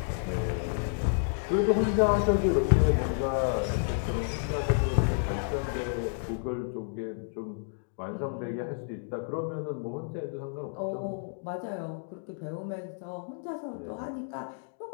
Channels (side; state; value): right; silent; digital silence